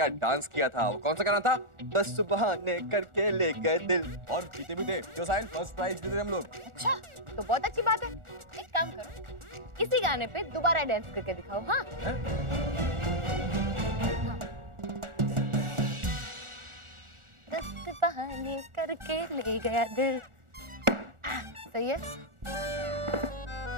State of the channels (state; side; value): late; left; 1.4 ms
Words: डांस किया था, वो कौन सा गाना था? 10 बहाने करके ले गए दिल, और जीते भी थे। क्यों साहिल, फर्स्ट प्राइज जीते थे हम लोग। अच्छा, तो बहुत अच्छी बात है। एक काम करो, इसी गाने पे दोबारा डांस करके दिखाओ। हाँ, हाँ। 10 बहाने करके ले गया दिल। सही है।